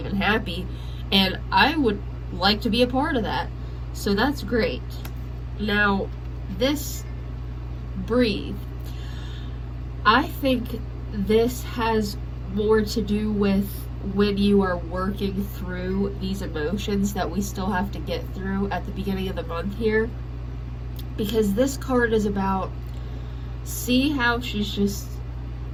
and happy, and I would like to be a part of that. So that's great. Now, this breathe, I think this has more to do with when you are working through these emotions that we still have to get through at the beginning of the month here. Because this card is about, see how she's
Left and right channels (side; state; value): both; identical; correlation 1.00